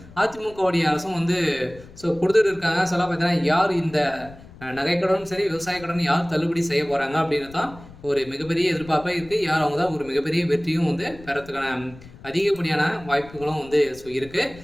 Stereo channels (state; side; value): noise; left; rumble, 20 dB below the sound